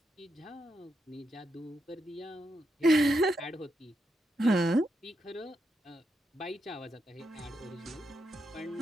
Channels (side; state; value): both; normal; correlation 0.83